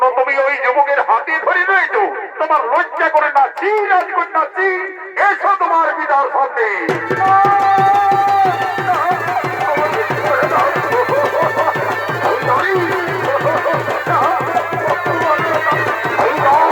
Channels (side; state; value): both; identical; correlation 1.00